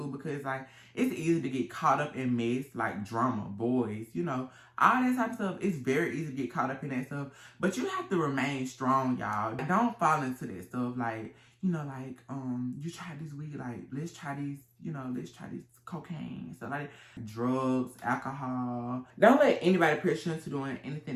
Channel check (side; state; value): both; identical; correlation 1.00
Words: because like it's easy to get caught up in mess, like drama, boys, you know, all that type of stuff. It's very easy to get caught up in that stuff. But you have to remain strong, y'all. Don't fall into that stuff. Like, you know, like you try this weed, like let's try these, you know, let's try this cocaine, stuff like that. Drugs, alcohol. Don't let anybody pressure you into doing